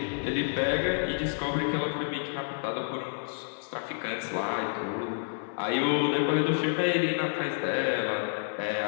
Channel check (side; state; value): right; silent; digital silence